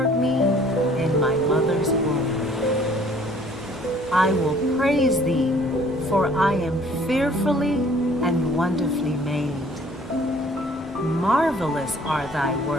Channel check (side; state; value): both; normal; correlation 0.56